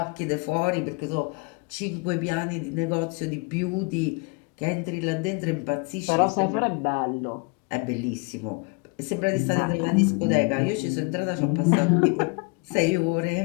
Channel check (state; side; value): quieter; right; 30.3 dB